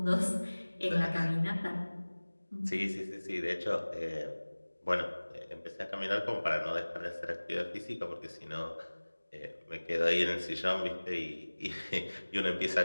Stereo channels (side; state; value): both; inverted; correlation -1.00